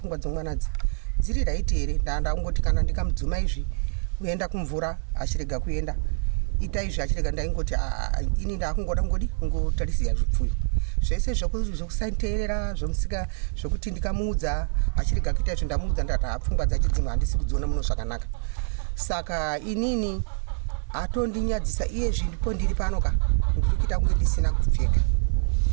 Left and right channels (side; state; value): left; silent; 61 dB below the other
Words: dzomwana dziri raiti here. Ndangoti kana ndikamudzuma izvi kuenda kumvura achirega kuenda, ita izvi achirega, ndaingoti ini ndakungoda kungotarisira zvipfuyo zvese zvokusateerera zvomusika, zvokuti ndikamuudza achirega kuita izvo ndamuudza ndati pfungwa dzacho dzimwe handisi kudziona muno zvakanaka. Saka inini atondinyadziisa iye zviripo ndiri pano ndiri kuita kunge ndisina kupfeka.